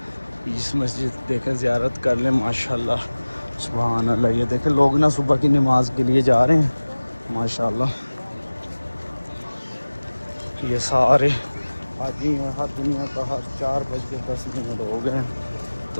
اس مسجد دیکھیں زیارت کر لیں ماشاءاللہ سبحان اللہ. یہ دیکھیں لوگ نا صبح کی نماز کے لیے جا رہے ہیں ماشاءاللہ. یہ سارے حاجی ہیں, ہر دنیا کا, ہر 4:10 ہو گئے ہیں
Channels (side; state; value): both; inverted; correlation -1.00